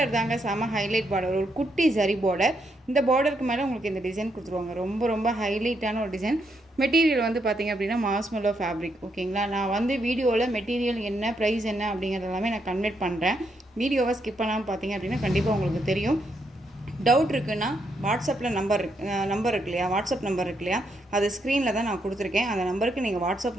தாங்க செம ஹைலைட் பார்டர், ஒரு குட்டி சரி பார்டர். இந்த பார்டருக்கு மேலே உங்களுக்கு இந்த டிசைன் கொடுத்துருவாங்க. ரொம்ப ரொம்ப ஹைலைட்டான ஒரு டிசைன். மெட்டீரியல் வந்து பார்த்திங்க அப்படின்னா மாஸ்மெல்லோ ஃபேப்ரிக், ஓகேங்களா? நான் வந்து வீடியோவில் மெட்டீரியல் என்ன, ப்ரைஸ் என்ன அப்படிங்கிறது எல்லாமே நான் கன்வெர்ட் பண்ணுறேன். வீடியோவை ஸ்கிப் பண்ணாமல் பார்த்தீங்க அப்படின்னா கண்டிப்பாக உங்களுக்கு தெரியும். டவுட் இருக்குன்னா வாட்ஸ்அப்பில் நம்பர் இருக்கு இல்லையா, வாட்ஸ்அப் நம்பர் இருக்கு இல்லையா, அது ஸ்க்ரீனில் தான் நான் கொடுத்துருக்கேன். அந்த நம்பருக்கு நீங்கள் வாட்ஸ்அப்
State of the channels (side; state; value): both; normal; correlation 0.78